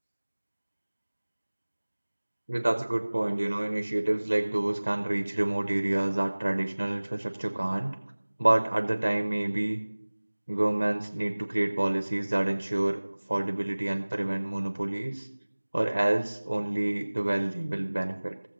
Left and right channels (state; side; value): inverted; both; correlation -1.00